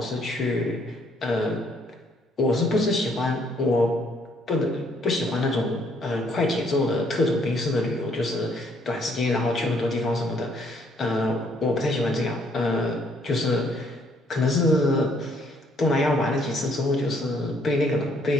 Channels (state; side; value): normal; both; correlation 0.67